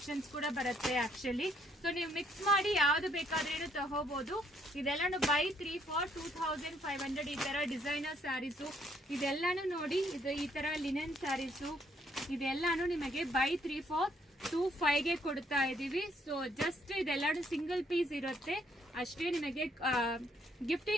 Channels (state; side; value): normal; both; correlation 0.69